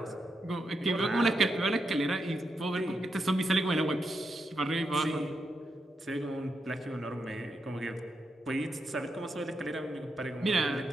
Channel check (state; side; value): normal; both; correlation 0.84